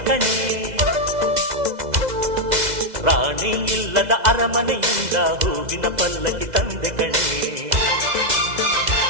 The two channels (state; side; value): late; left; 2.0 ms